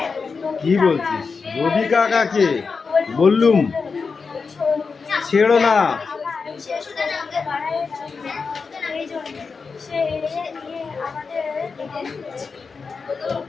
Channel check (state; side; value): quieter; right; 4.9 dB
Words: কি বলছিস? রবি কাকাকে বললুম ছেড়ো না। সে শুধু আমাকে বাড়ায় এই জন্য সে নিয়ে আমাদের